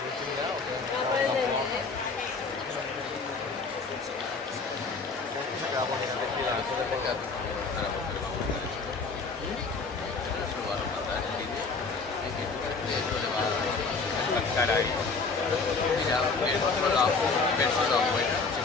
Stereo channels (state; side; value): quieter; right; 4.4 dB